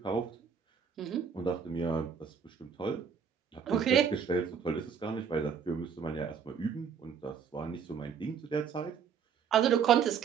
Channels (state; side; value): quieter; left; 6.9 dB